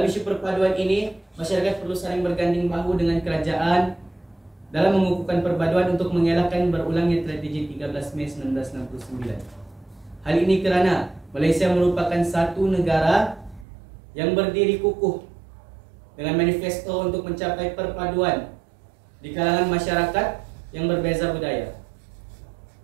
isu perpaduan ini, masyarakat perlu saling berganding bahu dengan kerajaan dalam mengukuhkan perpaduan untuk mengelakkan berulangnya tragedi 13 Mei 1969. Hal ini kerana Malaysia merupakan satu negara yang berdiri kukuh dengan manifesto untuk mencapai perpaduan di kalangan masyarakat yang berbeza budaya.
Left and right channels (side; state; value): left; drops out; at 13.7 s